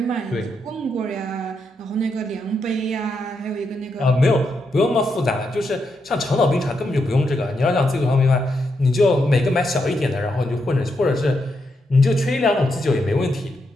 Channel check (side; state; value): both; normal; correlation 0.82